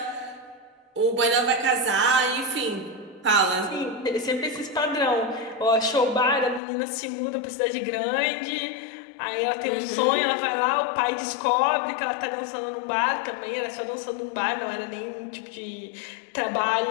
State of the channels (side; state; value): right; drops out; at 6.6 s